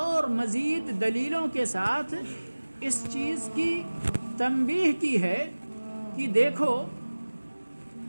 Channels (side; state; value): both; inverted; correlation -1.00